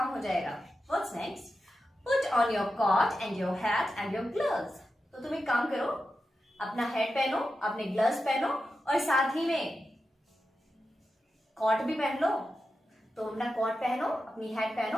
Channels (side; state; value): both; normal; correlation 0.90